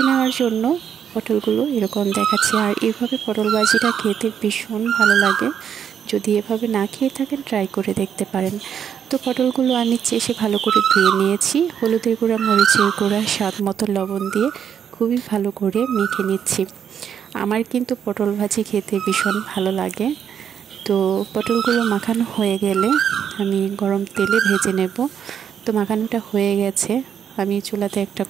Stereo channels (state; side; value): quieter; left; 8.3 dB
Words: নেওয়ার জন্য পটলগুলো এরকম দেখাচ্ছে। আর এইভাবে পটল ভাজিটা খেতে ভীষণ ভালো লাগে। যদি এভাবে না খেয়ে থাকেন ট্রাই করে দেখতে পারেন। তো পটলগুলো আমি চেষে ভালো করে ধুয়ে নিয়েছি। হলুদের গুঁড়া, মরিচের গুঁড়া, স্বাদ মতো লবণ দিয়ে খুবই ভালো করে মেখে নিচ্ছি। আমার কিন্তু পটল ভাজি খেতে ভীষণ ভালো লাগে। তো পটলগুলো মাখানো হয়ে গেলে আমি গরম তেলে ভেজে নেব। তো মাখানোটা হয়ে গেছে, আমি চুলাতে একটা